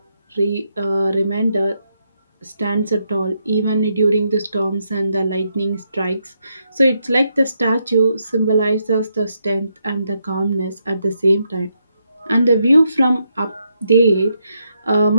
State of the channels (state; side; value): inverted; both; correlation -0.80